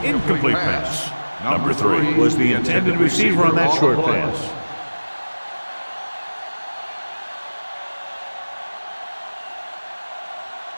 Incomplete pass. Number 3 was the intended receiver on that short pass.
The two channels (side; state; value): both; inverted; correlation -1.00